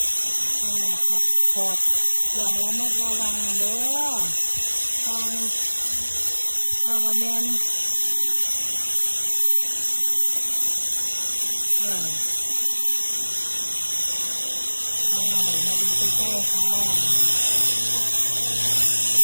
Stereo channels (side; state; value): both; inverted; correlation -1.00